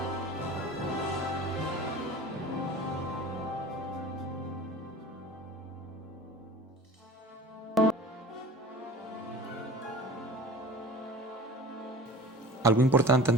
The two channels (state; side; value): normal; both; correlation 0.40